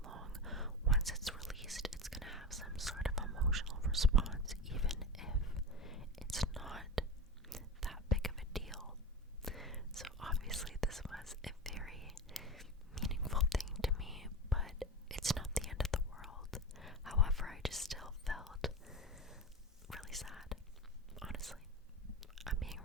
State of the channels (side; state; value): both; normal; correlation 0.24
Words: long, once it's released, it's going to have some sort of emotional response, even if it's not that big of a deal. So obviously this was a very meaningful thing to me, but it's not the end of the world. However, I just still